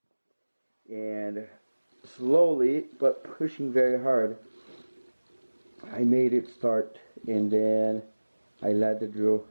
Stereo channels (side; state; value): both; inverted; correlation -1.00